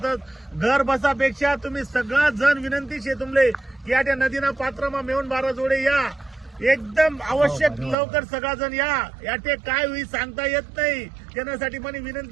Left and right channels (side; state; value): left; drops out; at 8.0 s